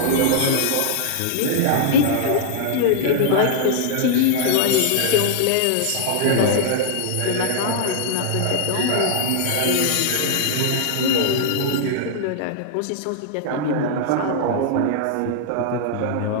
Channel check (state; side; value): different; both; correlation -0.01